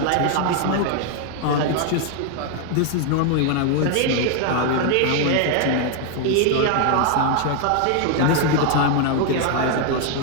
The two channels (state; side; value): different; both; correlation 0.00